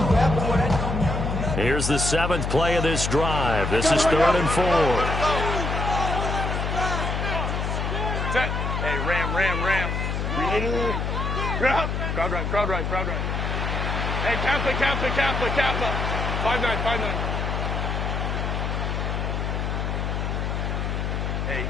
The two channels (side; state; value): left; noise; hum, 1 dB below the sound